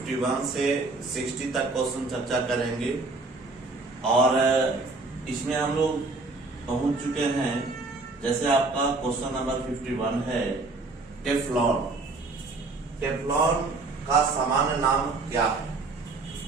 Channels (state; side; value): quieter; left; 3.5 dB